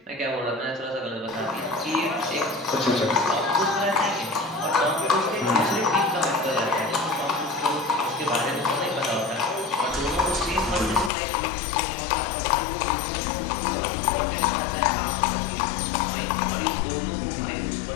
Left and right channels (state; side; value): drops out; right; at 11.1 s